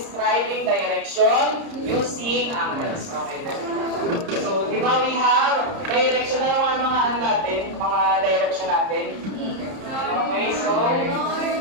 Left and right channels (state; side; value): late; left; 30 ms